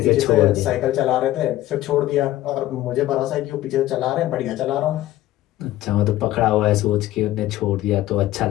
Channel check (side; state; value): right; quieter; 15.1 dB